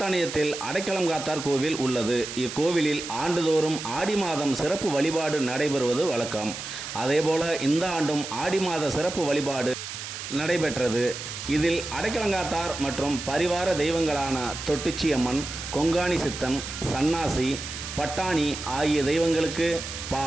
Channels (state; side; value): noise; right; hiss, 8 dB below the sound